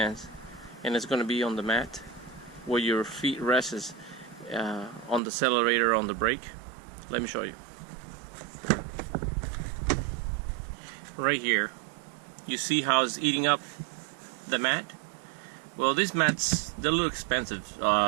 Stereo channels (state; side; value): drops out; left; at 5.2 s